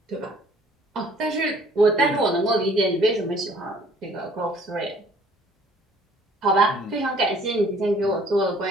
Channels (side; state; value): both; normal; correlation 0.57